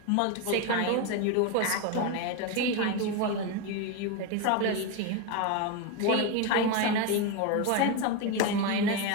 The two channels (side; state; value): both; different; correlation 0.03